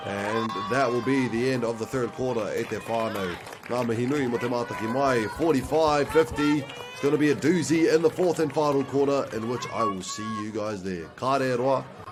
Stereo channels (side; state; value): both; identical; correlation 1.00